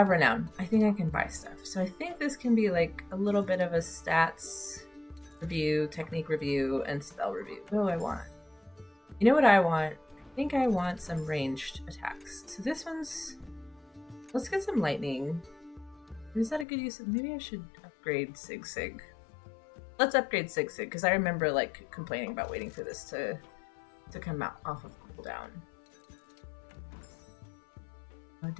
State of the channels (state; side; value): drops out; right; at 16.7 s